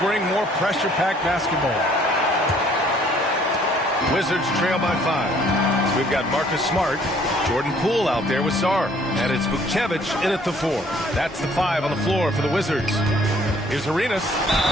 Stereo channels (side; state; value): both; normal; correlation 0.60